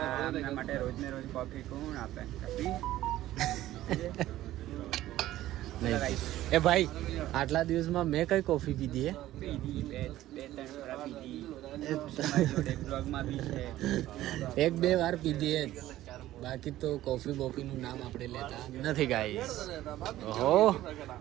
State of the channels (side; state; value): left; quieter; 14.6 dB